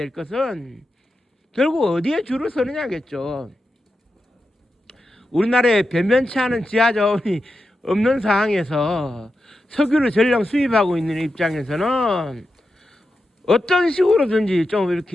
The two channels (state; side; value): normal; both; correlation 0.89